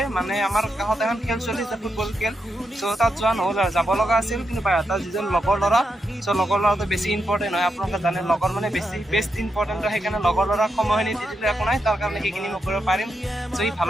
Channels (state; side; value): normal; both; correlation 0.84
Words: মানে আমাৰ কাষত এখন খেল চলি আছে, ফুটবল খেল। চ' তাত যোৱা নহ'ল আৰু, যাব লগা আছিল। কিন্তু বাইহাটাৰ যিজন লগৰ ল'ৰা, চ' লগৰ ল'ৰাটো বেছি ইম্পৰ্টেণ্ট হয়, আপোনালোকে জানে লগৰ মানে বেষ্ট ইম্পৰ্টেণ্ট হয়। সেইকাৰণে লগৰ ল'ৰাক সময়খিনি দি দিলে একো নাই, তাৰ কাৰণে সেইখিনি মই কৰিব পাৰিম। চ' সি